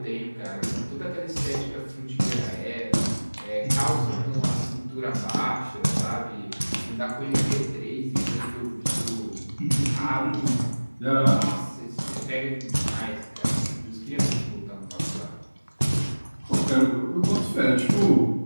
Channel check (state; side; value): inverted; both; correlation -1.00